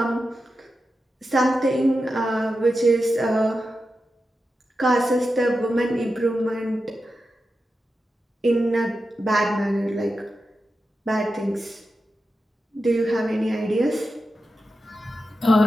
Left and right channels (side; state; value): both; normal; correlation 0.90